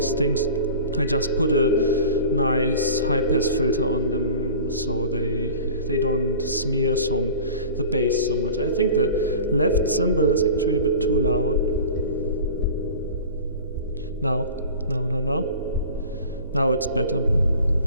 things, I just put a nice high pass filter on them so they don't smear the bass so much. I think the left cymbal is actually a bit too loud. Now it's better.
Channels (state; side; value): inverted; both; correlation -0.39